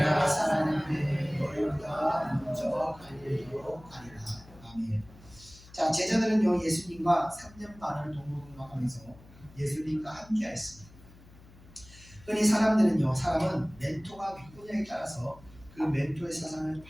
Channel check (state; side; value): noise; left; hum, 22 dB below the sound